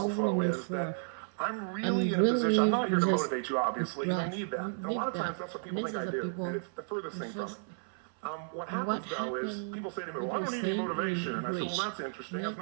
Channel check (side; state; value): left; silent; 56 dB below the other